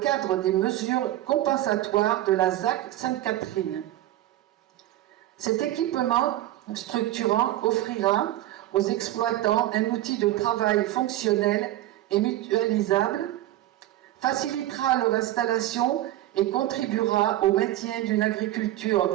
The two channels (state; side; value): quieter; left; 14.6 dB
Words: des mesures compensatoires de la ZAC Sainte-Catherine. Cet équipement structurant offrira aux exploitants un outil de travail fonctionnel et mutualisable, facilitera leur installation et contribuera au maintien d'une